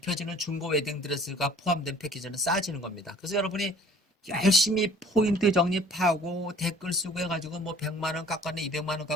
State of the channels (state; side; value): normal; both; correlation 0.52